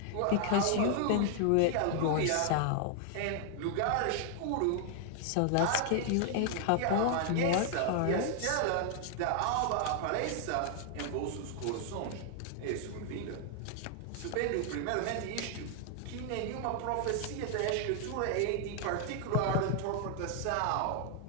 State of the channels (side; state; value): both; different; correlation 0.00